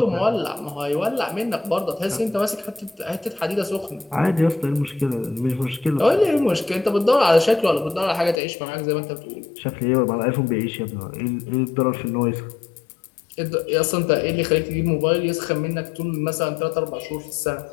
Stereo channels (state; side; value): drops out; right; at 8.3 s